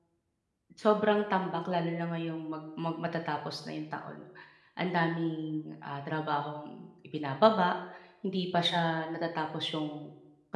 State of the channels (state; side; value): identical; both; correlation 1.00